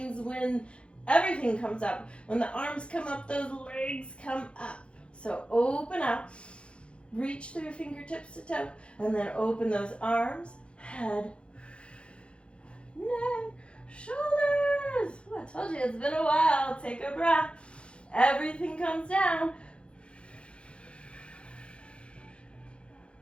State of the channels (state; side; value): late; right; 0.058 ms